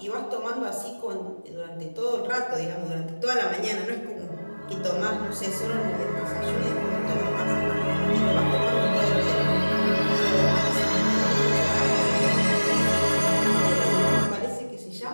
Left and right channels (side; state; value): both; inverted; correlation -1.00